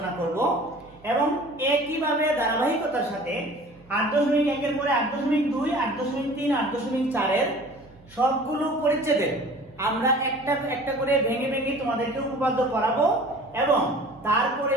করব এবং একইভাবে ধারাবাহিকতার সাথে 8.1 এর পরে 8.2, 8.3, 8.4 এর সবগুলো পরিচ্ছেদে আমরা একটা করে ভেঙে ভেঙে তোমাদেরকে উপপাদ্য পড়াবো এবং তারপরে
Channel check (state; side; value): noise; right; hum, 26 dB below the sound